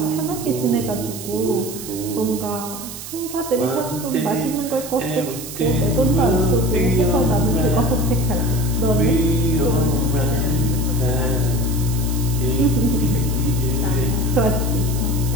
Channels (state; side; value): noise; right; hiss, 11 dB below the sound